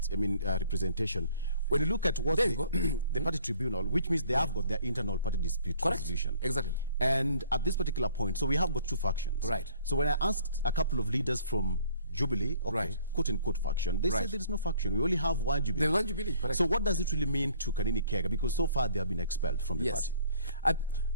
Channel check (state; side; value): inverted; both; correlation -0.57